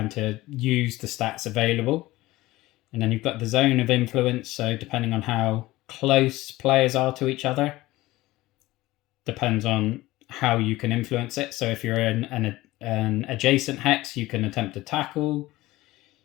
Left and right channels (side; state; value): right; quieter; 18.3 dB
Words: to use the stats available. And then you've got the zone of influence, so depending on how close players are to each other, depends on how you can influence it. So if you're in an adjacent hex, you can attempt to tackle.